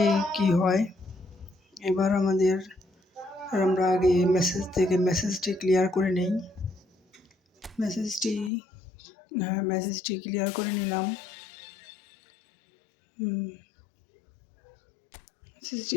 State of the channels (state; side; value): drops out; right; at 8.5 s